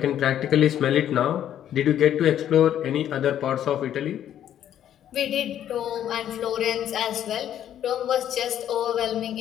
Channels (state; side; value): quieter; right; 10.7 dB